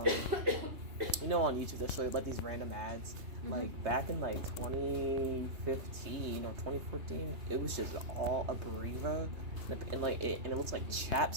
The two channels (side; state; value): left; late; 3.2 ms